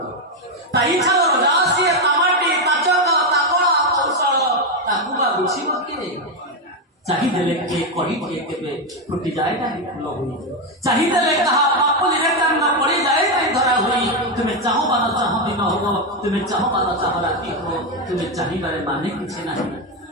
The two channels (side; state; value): both; normal; correlation 0.07